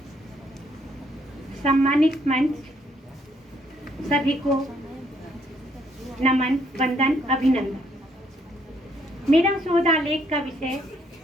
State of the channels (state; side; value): normal; both; correlation 0.70